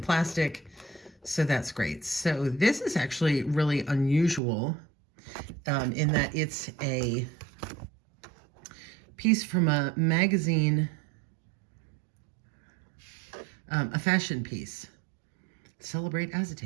plastic. So that's great. So this is actually really unusual in that it's a piece from a magazine, a fashion piece. Celebrate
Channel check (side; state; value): left; drops out; at 4.4 s